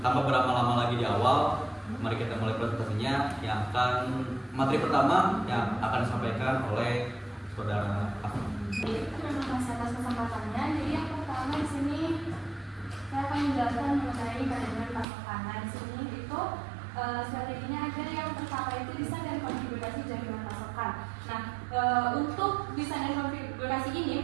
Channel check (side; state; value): left; drops out; at 15.1 s